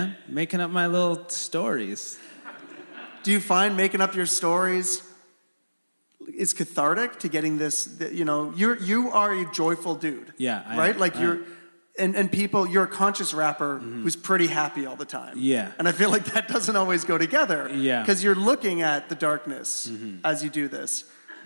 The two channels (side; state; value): both; inverted; correlation -1.00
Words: Making up my little stories. Do you find making up your stories is cathartic to getting this? You know, you are a joyful dude. Yeah, right. Like and people, you're a conscious rapper who's pretty happy all the time. Yeah. And I feel like that doesn't always go together. Yeah. Because you're looking at the darkness as you do this.